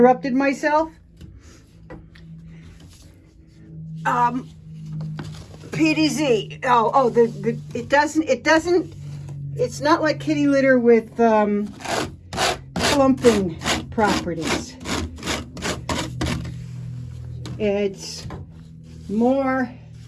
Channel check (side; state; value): both; identical; correlation 1.00